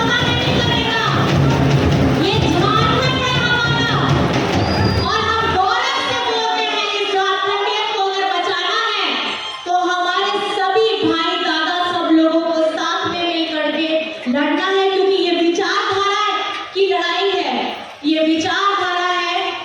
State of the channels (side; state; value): both; identical; correlation 1.00